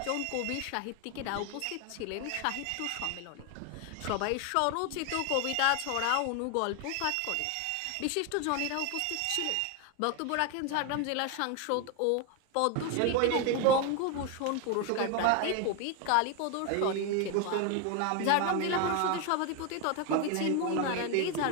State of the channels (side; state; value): both; different; correlation 0.01